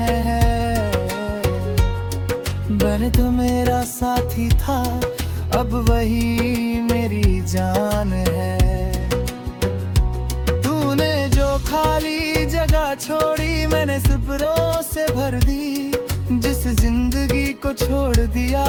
बन तो मेरा साथी था अब वही मेरी जान है। तूने जो खाली जगह छोड़ी मैंने सब्रों से भर दी, जिस जिंदगी को छोड़ दिया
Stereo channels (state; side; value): identical; both; correlation 1.00